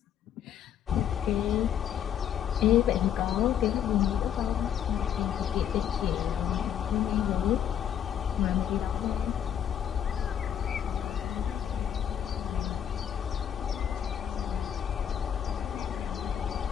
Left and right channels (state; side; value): quieter; right; 9.4 dB